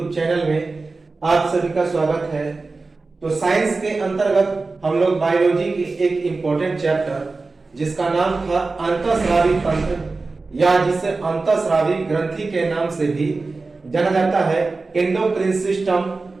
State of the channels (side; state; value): left; quieter; 3.8 dB